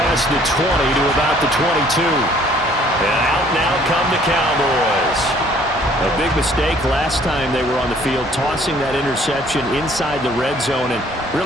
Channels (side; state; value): both; normal; correlation 0.58